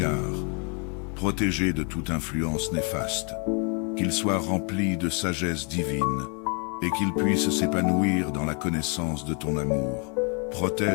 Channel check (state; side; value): quieter; right; 36.8 dB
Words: protégés de toute influence néfaste, qu'ils soient remplis de sagesse divine et qu'ils puissent s'épanouir dans la connaissance de ton amour.